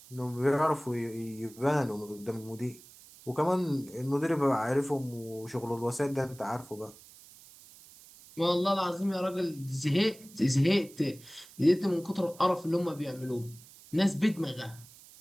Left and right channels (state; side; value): noise; right; hiss, 21 dB below the sound